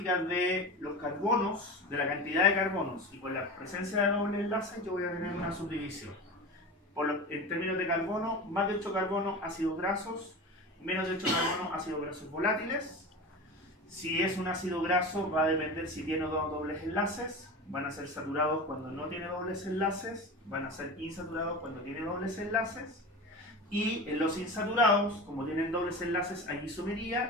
de los carbonos, de la cantidad de carbonos y con la presencia de doble enlaces, yo voy a tener una subdivisión. En términos de carbono, más de 8 carbonos ácidos grasos, menos de 8 carbonos ácidos grasos volátiles. Si es un ácido graso, va a depender si tiene o no dobles enlaces. Van a ser saturados cuando no tiene dobles enlaces, van a ser insaturados cuando tiene dobles enlaces. Y en los insaturados, como tienen dobles enlaces, hay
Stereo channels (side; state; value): both; normal; correlation 0.29